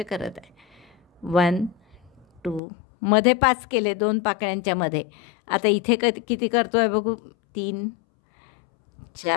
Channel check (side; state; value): right; drops out; at 2.6 s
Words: करत आहे. 1 2, मध्ये 5 केले 2 पाकळ्यांच्या मध्ये. आता इथे किती करतो आहे बघू, 3